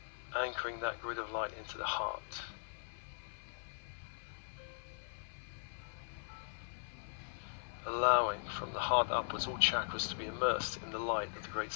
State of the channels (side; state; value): right; silent; 51 dB below the other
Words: Anchoring that grid of light into the heart. Allowing from the heart upwards all chakras to be immersed in the light of the great